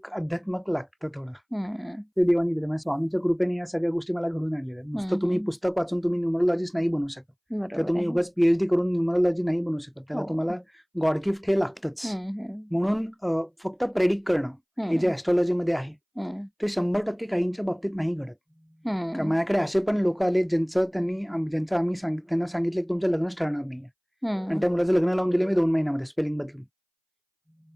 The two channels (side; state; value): both; identical; correlation 1.00